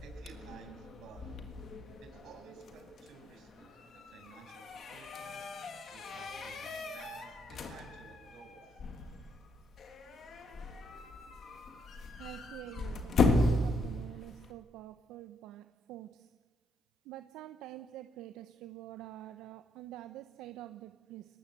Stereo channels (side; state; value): both; normal; correlation 0.74